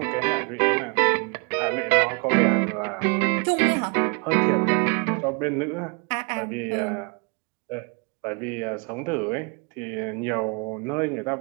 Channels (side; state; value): left; quieter; 33.5 dB